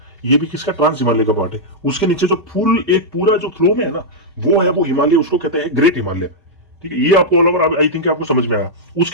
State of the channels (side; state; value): both; normal; correlation -0.07